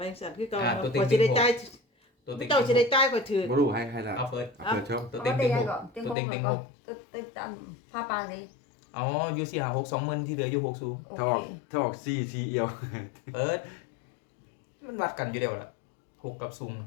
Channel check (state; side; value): drops out; right; at 6.2 s